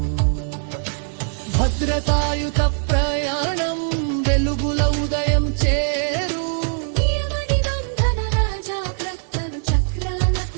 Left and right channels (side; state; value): left; silent; 65 dB below the other